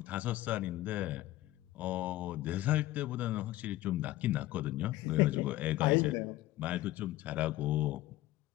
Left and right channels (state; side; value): quieter; right; 16.1 dB